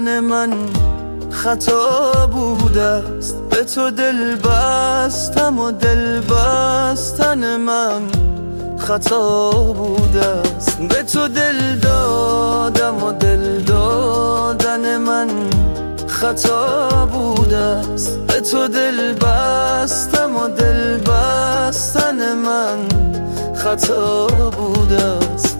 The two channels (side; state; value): both; inverted; correlation -1.00